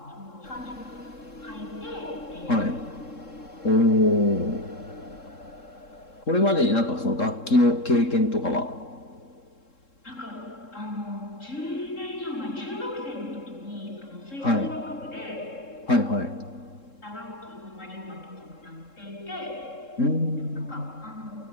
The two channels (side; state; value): right; late; 3.7 ms